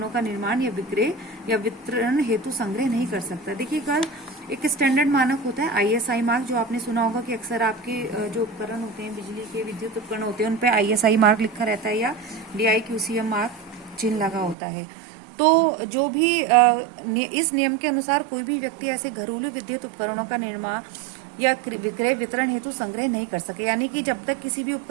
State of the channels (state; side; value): drops out; left; at 14.6 s